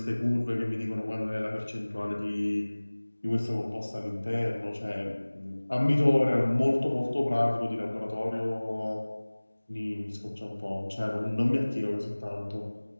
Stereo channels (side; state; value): both; inverted; correlation -1.00